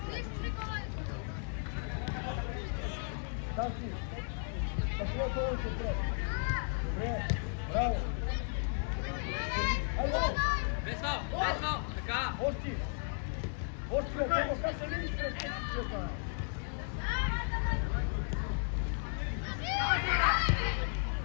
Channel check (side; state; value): right; silent; 55 dB below the other